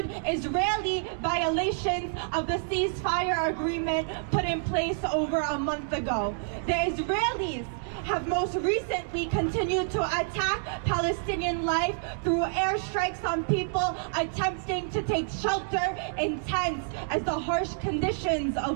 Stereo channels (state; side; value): silent; left; digital silence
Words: Israeli violations of the ceasefire agreement put in place over a month ago. The Israelis have most recently continued to attack Palestinian life through airstrikes on people attempting to take shelter in tents as the harsh conditions